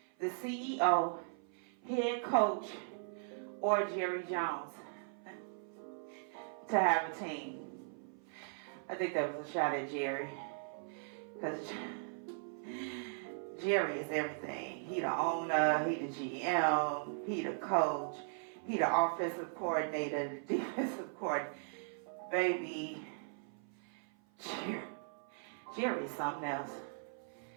the CEO, head coach, or Jerry Jones to have a team. I think that was a shot at Jerry, because Jerry is everything. He the owner, he the GM, he the coach, he the offensive coordinator, the defensive coordinator. Baby, Jerry is something else,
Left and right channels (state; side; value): silent; left; 52 dB below the other